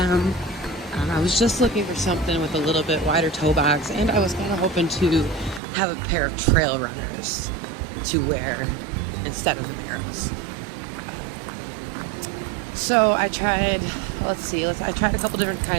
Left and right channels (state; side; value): drops out; left; at 5.6 s